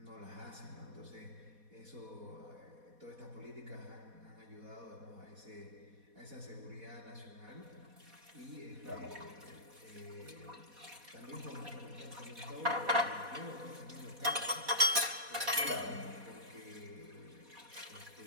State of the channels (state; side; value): late; left; 4.1 ms